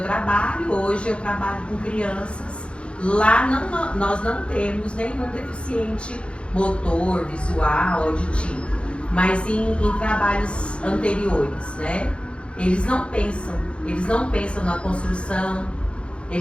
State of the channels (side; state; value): right; late; 0.058 ms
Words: trabalho, hoje eu trabalho com crianças, lá nós não temos nenhum deficiente motor, visual, auditivo, mas em trabalhos anteriores, né? Eles não pensam na construção,